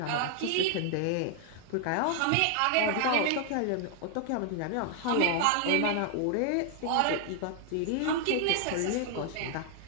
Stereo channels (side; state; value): both; different; correlation 0.00